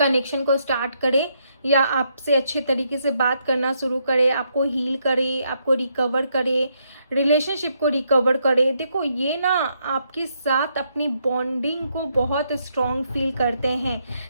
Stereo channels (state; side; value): inverted; both; correlation -0.76